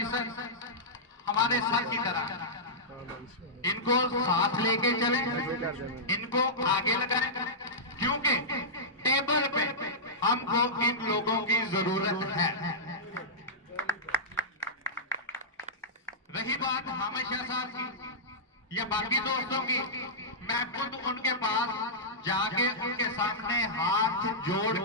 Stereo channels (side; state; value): both; normal; correlation -0.12